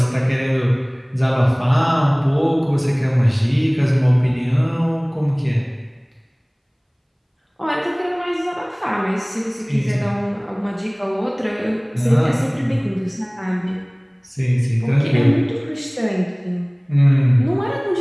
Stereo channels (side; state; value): both; identical; correlation 1.00